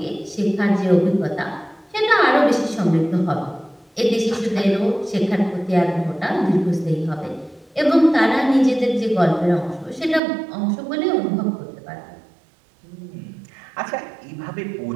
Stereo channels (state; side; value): drops out; left; at 10.2 s